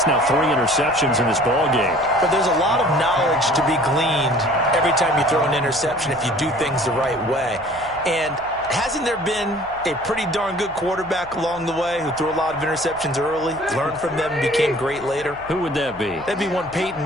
now 3 interceptions in this ball game. But there's a lot of knowledge to be gleaned every time you throw an interception if you do things the right way. And hasn't there been a pretty darn good quarterback along the way who threw a lot of interceptions early, learned from them, and became great later? Who would that be? That'd be one Peyton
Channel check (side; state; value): right; noise; hum, 22 dB below the sound